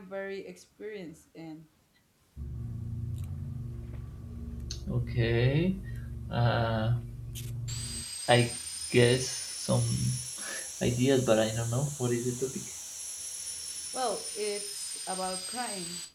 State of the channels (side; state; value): both; identical; correlation 1.00